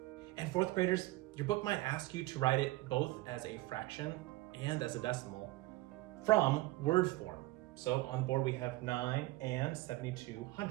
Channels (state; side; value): quieter; left; 19.1 dB